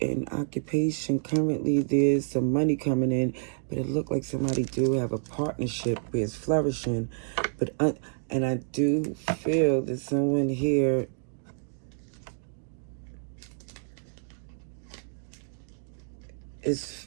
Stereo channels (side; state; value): left; silent; digital silence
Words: occupation, currently there's some money coming in, but it looked like somebody do have a partnership where it's flourishing. But and I do feel that someone here is